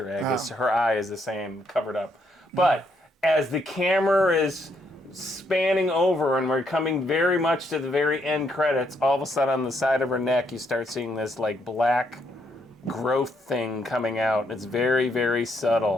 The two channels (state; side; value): normal; both; correlation 0.74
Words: egg. Wow. Her eye is the same, covered up. But as the camera is spanning over and we're coming very much to the very end credits, all of a sudden on the side of her neck you start seeing this like black growth thing coming out. It's very, very